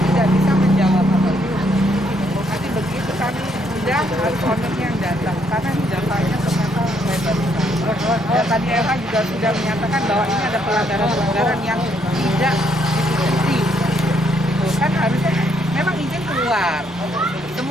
tidak bisa menjawab apapun. Nanti begitu kami sudah harus ownernya yang datang, karena ini datanya ternyata lebar sekali. Dan tadi LH juga sudah menyatakan bahwa ini ada pelanggaran-pelanggaran yang tidak diikuti. Kan harusnya memang izin keluar,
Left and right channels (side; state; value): both; normal; correlation 0.72